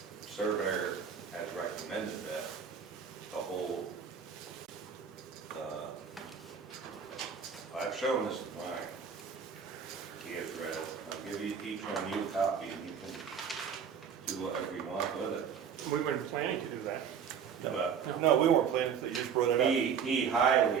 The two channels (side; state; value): left; quieter; 7.1 dB